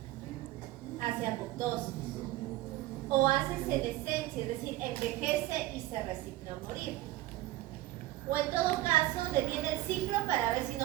Hace apoptosis o hace senescencia, es decir, envejece y se resigna a morir. O en todo caso, detiene el ciclo para ver si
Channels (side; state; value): left; quieter; 16.4 dB